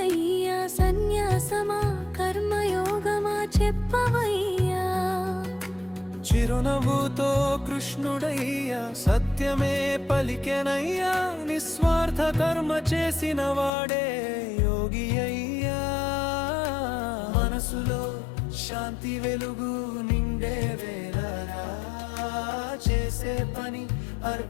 సన్యాసమా కర్మయోగమా చెప్పవయ్యా. చిరునవ్వుతో కృష్ణుడయ్యా సత్యమే పలికెనయ్యా, నిస్వార్థ కర్మ చేసిన వాడే యోగి అయ్యా. మనసులో శాంతి వెలుగు నిండే వేళరా, చేసే పని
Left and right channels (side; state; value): right; drops out; at 13.7 s